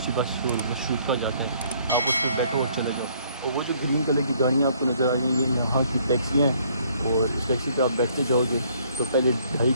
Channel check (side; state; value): both; inverted; correlation -0.63